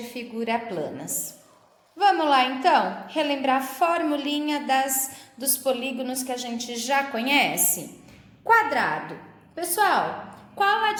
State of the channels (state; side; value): identical; both; correlation 1.00